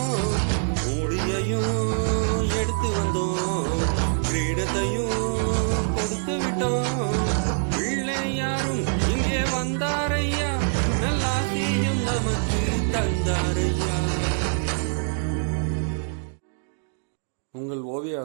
மூடியையும் எடுத்து வந்தோம், கிரீடத்தையும் கொடுத்து விட்டோம். பிள்ளையாரும் இங்கே வந்தாரையா, நல்லாசியும் நமக்கு தந்தாரையா. உங்கள் ஓவிய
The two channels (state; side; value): silent; left; digital silence